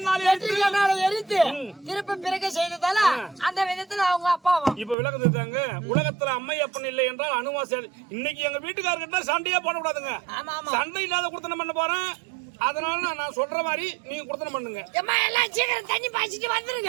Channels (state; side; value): drops out; left; at 5.0 s